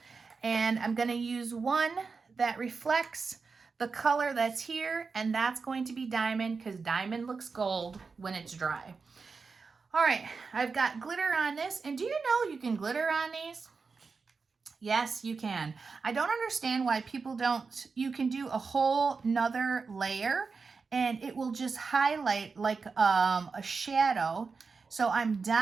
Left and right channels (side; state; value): left; quieter; 4.8 dB